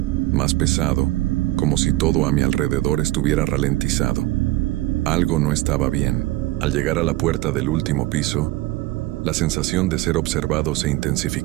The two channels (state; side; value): quieter; left; 18.1 dB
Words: más pesado, como si todo a mi alrededor estuviera ralentizado. Algo no estaba bien. Al llegar a la puerta del último piso, la sensación de ser observado se